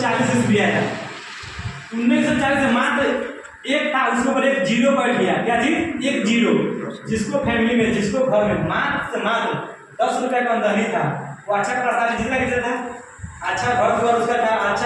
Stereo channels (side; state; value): both; identical; correlation 1.00